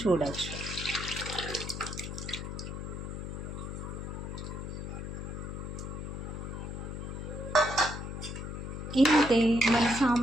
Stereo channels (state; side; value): noise; left; hum, 6 dB below the sound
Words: చూడొచ్చు. ఇంతే, మన